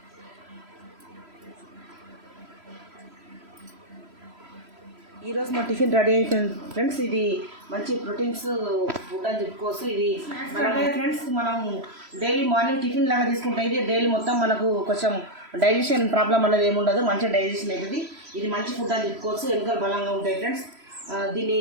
ఈరోజు మా టిఫిన్ రెడీ అయిపోయింది ఫ్రెండ్స్. ఇది మంచి ప్రోటీన్స్ ఫుడ్ అని చెప్పుకోవచ్చు. ఇది ఫ్రెండ్స్ మనం డైలీ మార్నింగ్ టిఫిన్ లాగా తీసుకుంటే ఇది డైలీ మొత్తం మనకు కొంచెం డైజెషన్ ప్రాబ్లం అనేది ఏముండదు, మంచిగా డైజెషన్ అవుతుంది. ఇది మంచి ఫుడ్ అని చెప్పుకోవచ్చు. ఎముకలు బలంగా ఉంటాయి ఫ్రెండ్స్. దీన్ని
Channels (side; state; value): left; late; 3.0 ms